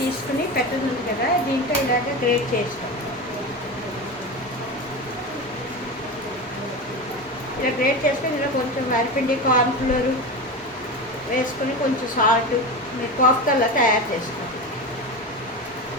పెట్టదుంది కదా, దీంట్లో ఇలాగ గ్రేట్ చేస్తాం. ఇలా గ్రేట్ చేసుకొని ఇలా కొంచెం వరిపిండి, కార్న్ఫ్లోర్ వేసుకొని కొంచెం సాల్ట్ మీరు కోఫ్తాలో తయారు చేసుకోండి.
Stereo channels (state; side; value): normal; both; correlation 0.24